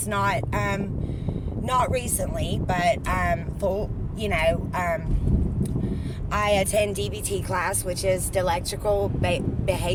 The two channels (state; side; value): identical; both; correlation 1.00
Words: not recently, but full. I attend DBT class, which is dialectical